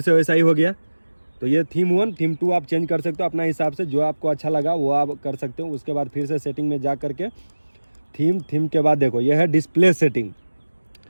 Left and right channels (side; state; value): both; inverted; correlation -1.00